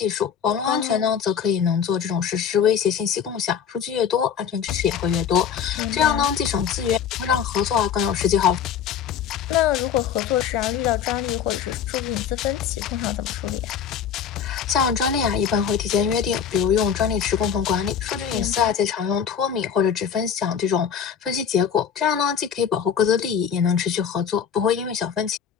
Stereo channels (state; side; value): quieter; right; 7.9 dB